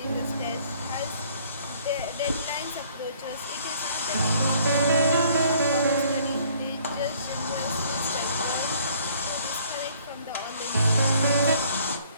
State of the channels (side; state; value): both; inverted; correlation -0.59